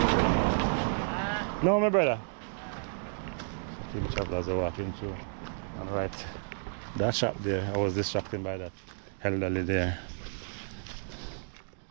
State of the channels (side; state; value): left; silent; digital silence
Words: No my brother. Team travelers are walking through. And right, that shop there, I was distracted by that elderly there.